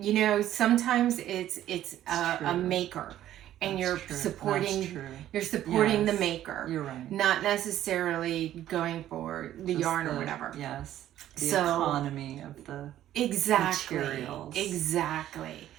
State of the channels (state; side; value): quieter; left; 12.5 dB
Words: Sometimes it's a maker. And you're supporting the maker. You're right. Not necessarily going for the yarn or whatever. Yes. The economy of the materials. Exactly.